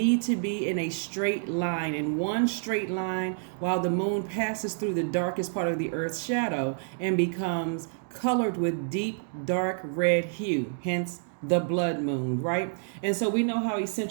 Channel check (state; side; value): silent; left; digital silence